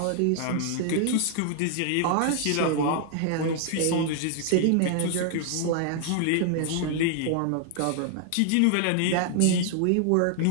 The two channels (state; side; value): different; both; correlation 0.00